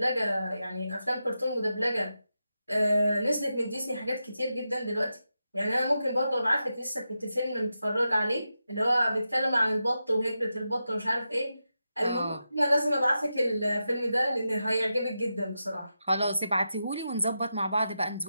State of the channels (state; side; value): inverted; both; correlation -0.89